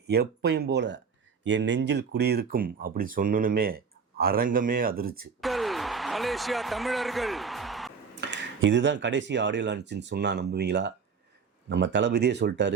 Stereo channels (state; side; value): quieter; left; 5.9 dB